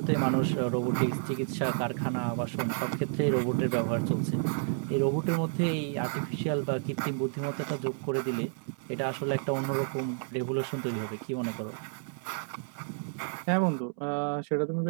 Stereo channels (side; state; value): left; silent; 57 dB below the other